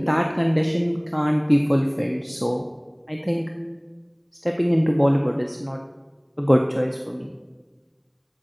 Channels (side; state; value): both; identical; correlation 1.00